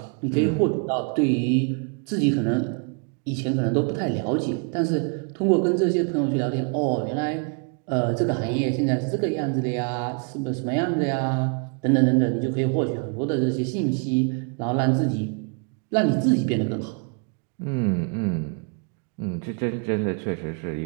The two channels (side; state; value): left; quieter; 38.7 dB